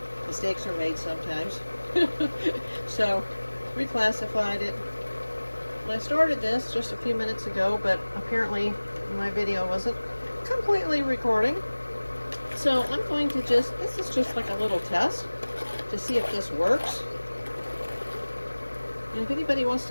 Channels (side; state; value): both; inverted; correlation -1.00